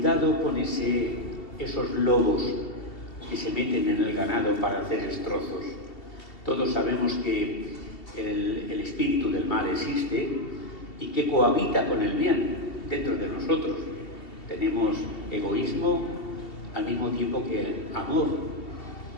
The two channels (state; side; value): late; right; 2.7 ms